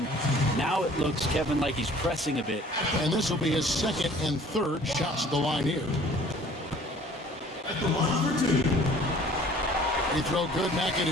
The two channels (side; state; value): both; normal; correlation 0.52